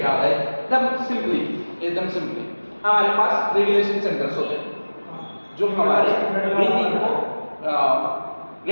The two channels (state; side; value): inverted; both; correlation -1.00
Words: होता है? एकदम सिंपली हमारे पास रेगुलेशन सेंटर्स होते हैं जो हमारे ब्रीथिंग को